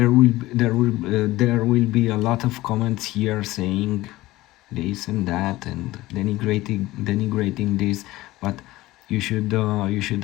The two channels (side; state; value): right; quieter; 18.0 dB